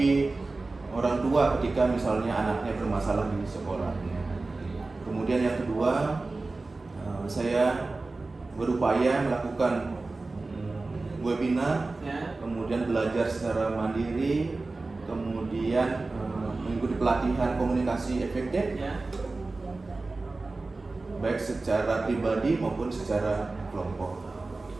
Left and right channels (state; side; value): quieter; left; 3.4 dB